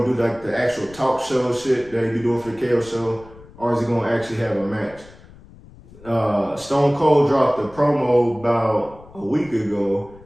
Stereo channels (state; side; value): noise; left; rumble, 22 dB below the sound